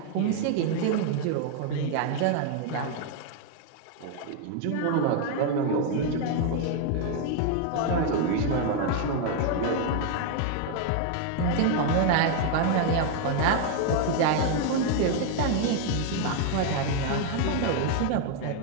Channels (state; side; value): different; both; correlation 0.01